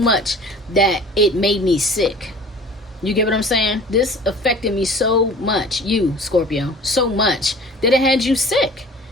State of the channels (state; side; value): normal; both; correlation 0.44